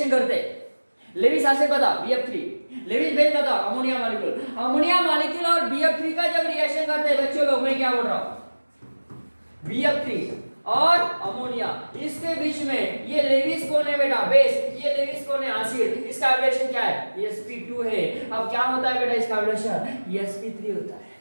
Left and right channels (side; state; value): both; inverted; correlation -1.00